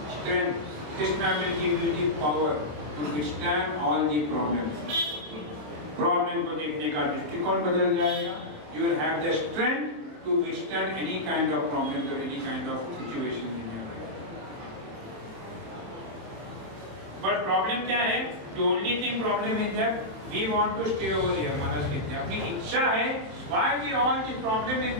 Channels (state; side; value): late; left; 26 ms